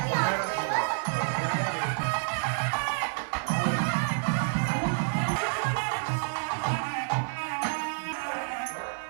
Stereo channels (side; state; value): left; silent; 59 dB below the other